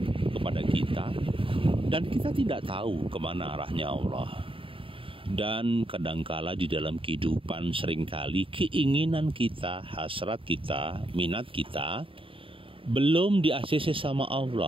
kepada kita dan kita tidak tahu kemana arahnya Allah. Dan kadangkala di dalam kehidupan seringkali keinginan kita, hasrat kita, minat kita belum di-ACC sama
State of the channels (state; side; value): late; left; 0.26 ms